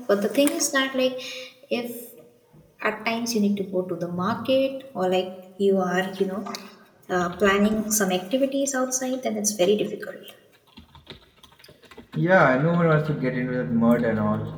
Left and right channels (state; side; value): identical; both; correlation 1.00